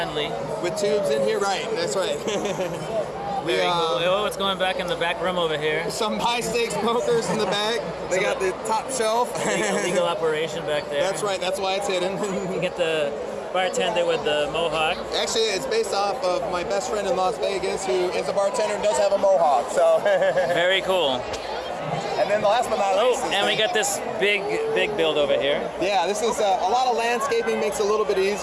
With tubes in here. Right, that's right. Very cool. Oh, what's going back in the back room over here? Some high-stakes smokers in the back. They got the top shelf. Legal operation back there. That's right. That's why it's hidden. You get the bartender with the mohawk. Actually, it's based off of my best friend in Las Vegas, who is a bartender and does have a mohawk. So. Very cool. And then the last but not least. And we got this big build over here. Yeah, this is a lot of landscaping, makes it a little bit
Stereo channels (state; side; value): identical; both; correlation 1.00